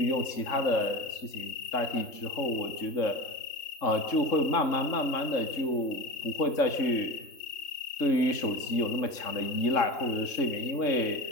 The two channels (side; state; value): right; late; 3.7 ms